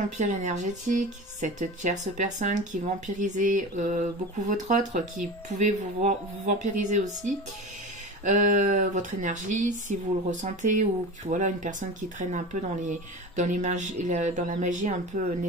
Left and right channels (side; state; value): both; normal; correlation 0.31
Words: énergétique, cette tierce personne qui vampirisait beaucoup votre autre, qui pouvait vous vampiriser aussi. Votre énergie, si vous le ressentez, ou voilà, une personne qui traîne un peu dans la magie un peu